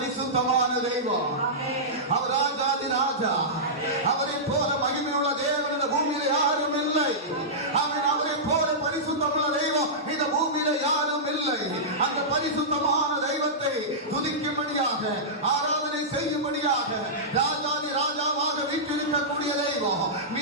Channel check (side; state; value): both; normal; correlation -0.15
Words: தெய்வம், அவர் ராஜாதி ராஜா. அவரை போல மகிமையுள்ள தேவன் இந்த பூமியில யாரும் இல்லை. அவரை போல பரிசுத்தமுள்ள தெய்வம் இந்த பூமியில யாரும் இல்லை. அந்த பரிசுத்தமான தெய்வத்தை துதிக்கும்படியாக, ஆராதனை செய்யும்படியாக, ராஜாதி ராஜாவாக வீற்றிருக்கக்கூடிய தெய்வம்,